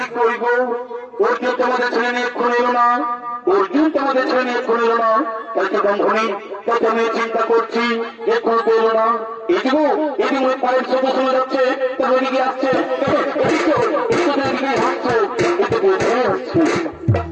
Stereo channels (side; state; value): both; identical; correlation 1.00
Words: অর্জুন তোমাদের ছেলে নিয়ে খুন এলো না, অর্জুন তোমাদের ছেলে নিয়ে খুন এলো না, তাই তো ব্রাহ্মণী প্রথমে চিন্তা করছি যে খুন এলো না। এদিকে এদিকে পায়ের শব্দ শোনা যাচ্ছে, তার ওদিকে আসছে, হাসছে,